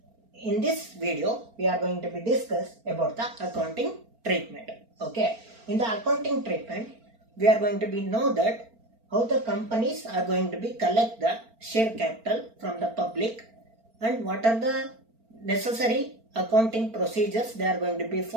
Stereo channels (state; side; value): late; left; 4.4 ms